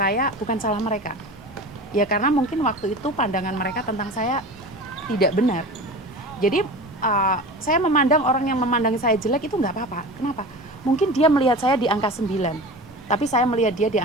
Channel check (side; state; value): both; normal; correlation 0.33